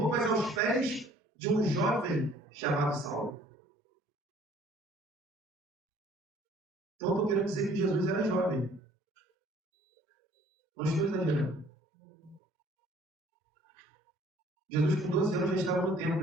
aos pés de um jovem chamado Saulo. Então estou querendo dizer que Jesus era jovem. Não estou exagerando. Jesus com 12 anos já estava no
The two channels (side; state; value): both; normal; correlation 0.56